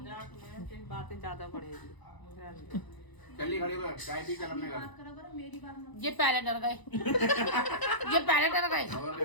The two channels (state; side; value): late; right; 1.0 ms